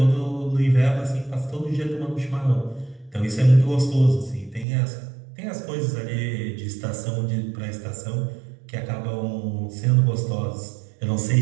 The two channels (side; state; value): left; drops out; at 4.7 s